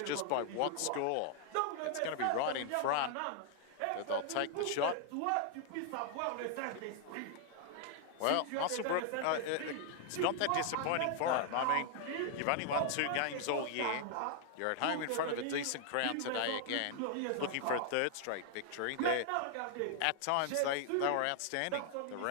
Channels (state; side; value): different; both; correlation 0.00